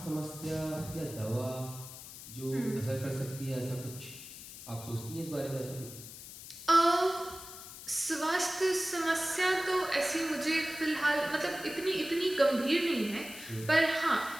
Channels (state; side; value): noise; left; hiss, 13 dB below the sound